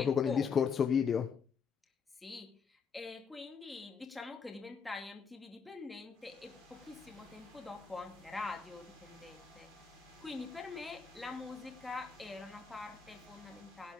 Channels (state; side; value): quieter; right; 6.1 dB